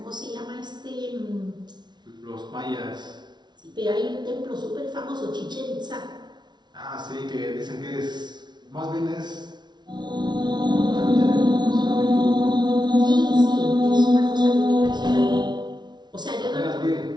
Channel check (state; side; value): late; left; 0.20 ms